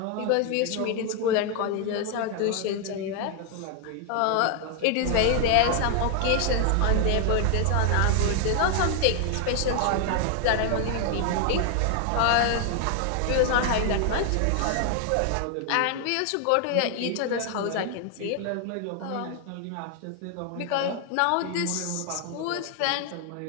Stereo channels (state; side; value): different; both; correlation 0.00